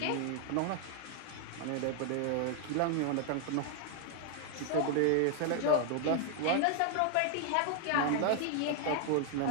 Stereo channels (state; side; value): different; both; correlation 0.00